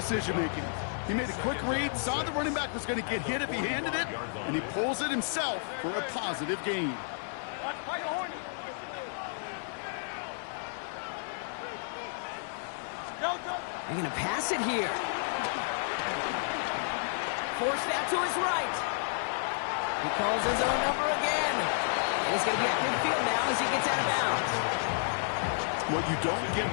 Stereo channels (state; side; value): silent; right; 57 dB below the other